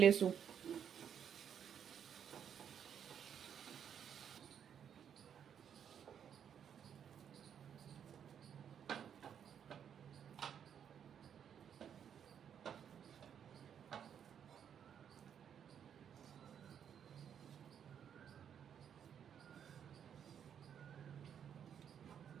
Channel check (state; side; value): quieter; left; 8.4 dB